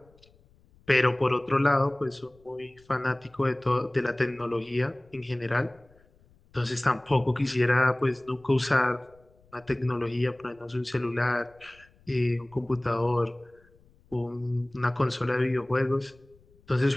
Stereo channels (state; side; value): noise; left; rumble, 30 dB below the sound